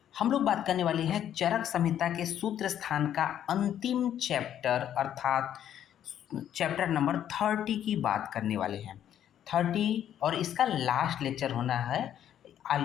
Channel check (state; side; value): quieter; right; 10.4 dB